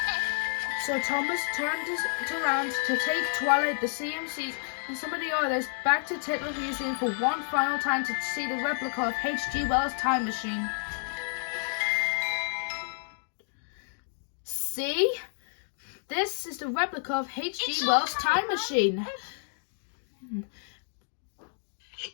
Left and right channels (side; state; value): right; silent; digital silence